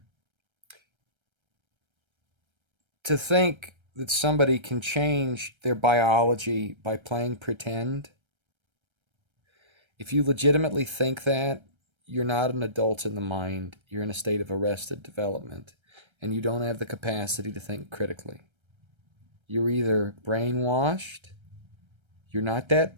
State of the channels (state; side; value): late; left; 1.3 ms